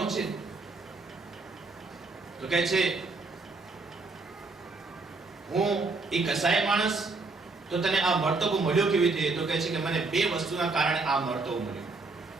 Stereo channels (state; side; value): quieter; left; 3.7 dB